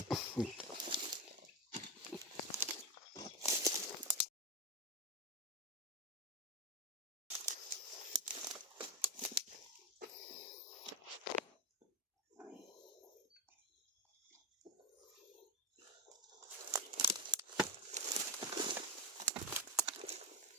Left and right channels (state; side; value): normal; both; correlation 0.14